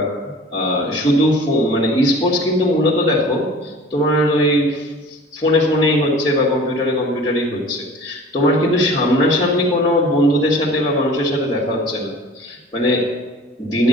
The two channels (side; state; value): both; normal; correlation 0.44